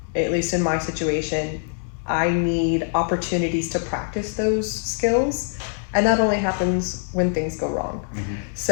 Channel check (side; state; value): right; silent; digital silence